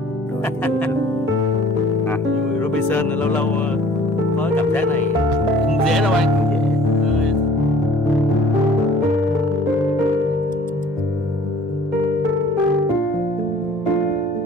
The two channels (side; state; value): both; normal; correlation 0.51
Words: Robinson lâu lâu có cảm giác này